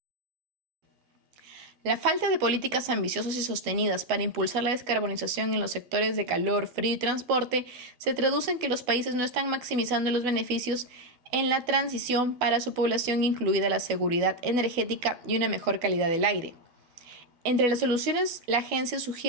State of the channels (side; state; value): left; late; 12 ms